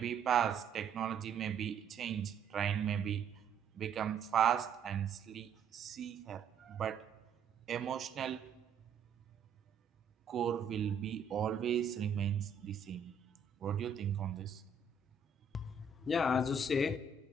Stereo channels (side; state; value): left; quieter; 4.9 dB